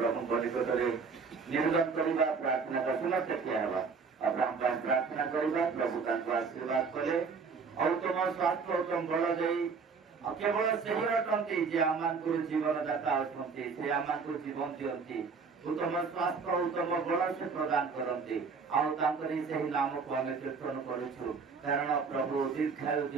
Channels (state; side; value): quieter; left; 5.1 dB